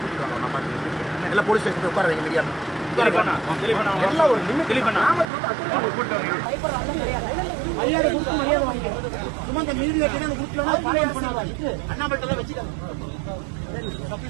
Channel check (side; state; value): left; drops out; at 5.2 s